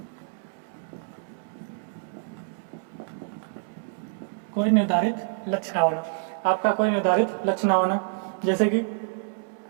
कोई निर्धारित लक्ष्य ना होना, आपका कोई निर्धारित लक्ष्य ना होना। जैसे कि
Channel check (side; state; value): left; silent; digital silence